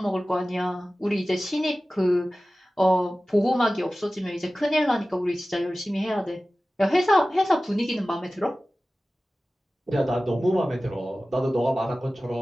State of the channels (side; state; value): both; normal; correlation 0.96